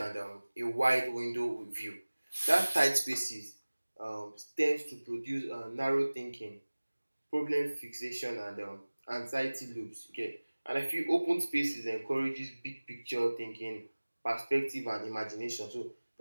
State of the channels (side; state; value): both; inverted; correlation -1.00